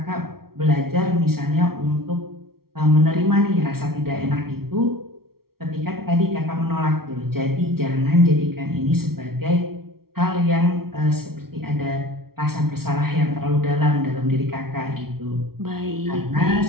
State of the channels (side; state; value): left; late; 0.94 ms